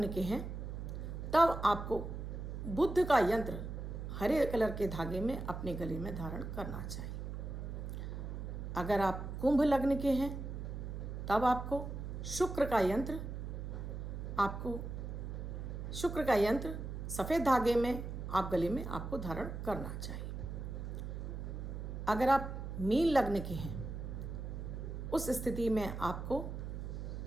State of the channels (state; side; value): noise; right; hum, 6 dB below the sound